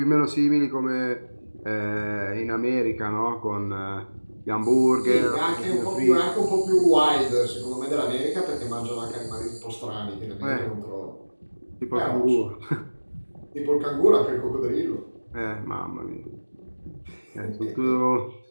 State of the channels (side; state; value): both; inverted; correlation -1.00